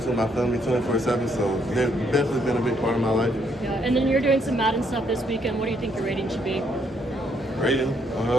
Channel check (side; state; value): both; normal; correlation 0.72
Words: with my family 24/7, so they've definitely been a big part of my life. Yeah, and then you're doing some Madden stuff this weekend. What do you think your rating should be? Rating?